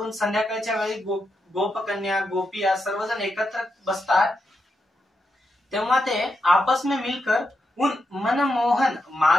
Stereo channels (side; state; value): both; normal; correlation 0.84